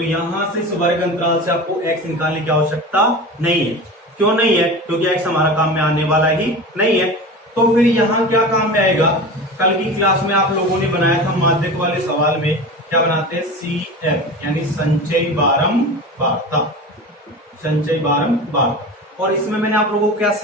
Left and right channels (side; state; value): both; normal; correlation 0.31